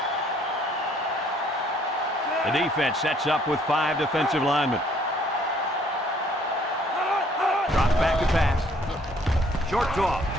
The defense sets up with 5 defensive linemen. Drops back to pass. Short toss.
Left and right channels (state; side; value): normal; both; correlation 0.62